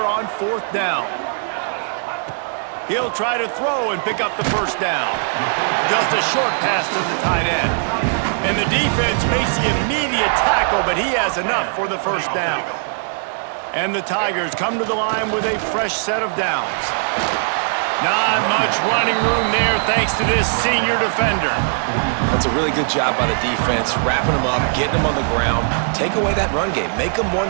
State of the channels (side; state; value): left; silent; digital silence